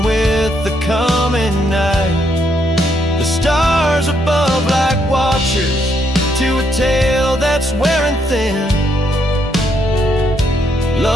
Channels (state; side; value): normal; both; correlation 0.75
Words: with the coming night. The stars above like watchers to a tale that's wearing thin.